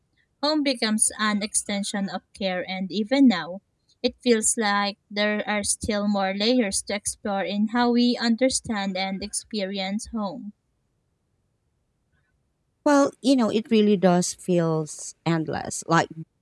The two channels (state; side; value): identical; both; correlation 1.00